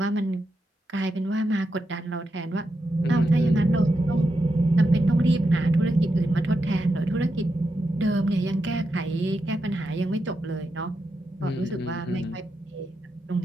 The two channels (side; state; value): both; normal; correlation 0.86